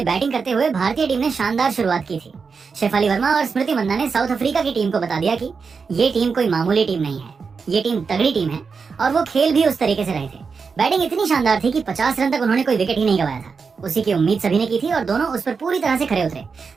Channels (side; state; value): left; quieter; 5.2 dB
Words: बैटिंग करते हुए भारतीय टीम ने शानदार शुरुआत की थी। शेफाली वर्मा और स्मृति मंदाना ने साउथ अफ्रीका की टीम को बता दिया कि ये टीम कोई मामूली टीम नहीं है, ये टीम तगड़ी टीम है और वो खेल भी उस तरीके से रहे थे। बैटिंग इतनी शानदार थी कि 50 रन तक उन्होंने कोई विकेट ही नहीं गवाया था। उसी की उम्मीद सभी ने की थी और दोनों उस पर पूरी तरह से खरे उतरे।